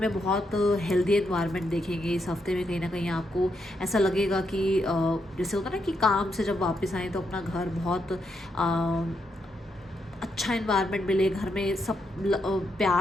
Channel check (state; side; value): normal; both; correlation 0.80